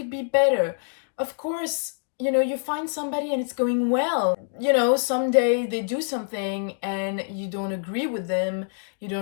be better. Of course, you find somebody and it's going well. Someday they do something and you don't agree with them, you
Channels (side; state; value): right; silent; digital silence